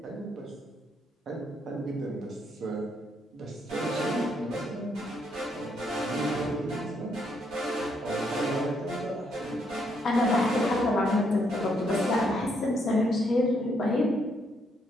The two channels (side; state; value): both; normal; correlation 0.74